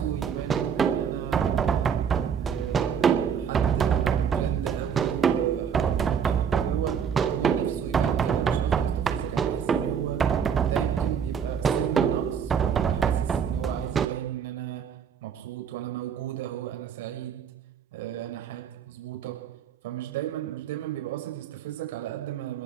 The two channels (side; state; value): left; quieter; 7.5 dB